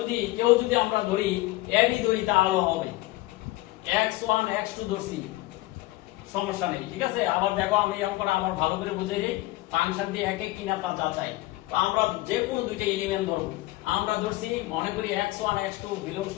আমরা ধরি ab ধরি তাহলে হবে x1 x2 ধরছি, সমস্যা নেই, ঠিক আছে। আবার দেখো আমি অঙ্কটা আবার ভালো করে বুঝে যাই, ফাংশনটি এক এক কিনা তা যাচাই। তো আমরা যে কোনো দুইটা এলিমেন্ট ধরব, আমরা ধরছি মনে করি x1 x2 belongs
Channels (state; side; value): quieter; right; 18.8 dB